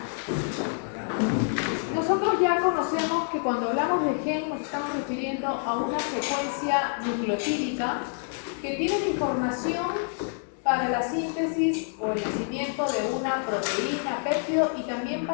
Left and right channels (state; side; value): silent; right; 60 dB below the other